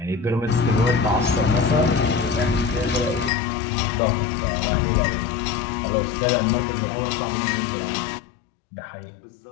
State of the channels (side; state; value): right; drops out; at 3.3 s